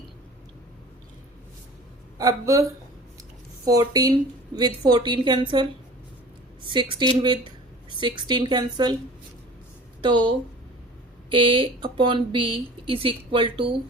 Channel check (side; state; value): both; normal; correlation 0.42